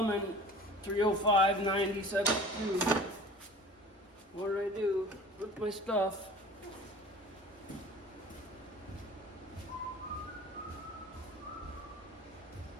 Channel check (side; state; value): both; normal; correlation 0.42